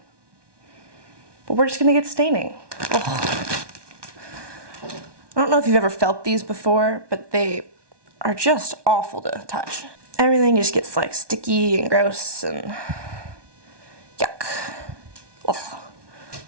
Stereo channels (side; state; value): left; late; 1.2 ms